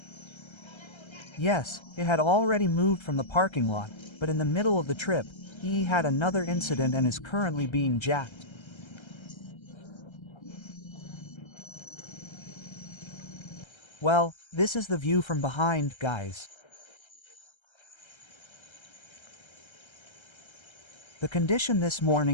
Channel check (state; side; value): late; right; 1.3 ms